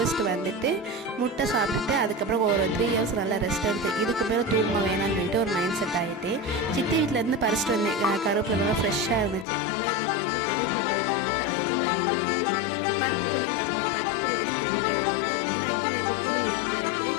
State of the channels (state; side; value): drops out; right; at 9.5 s